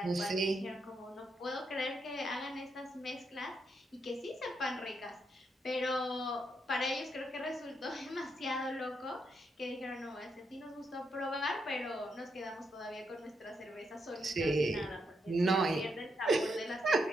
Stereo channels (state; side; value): normal; both; correlation 0.80